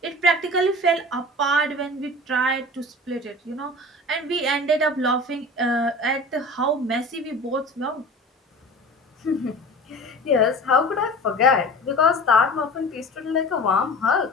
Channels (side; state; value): both; normal; correlation 0.37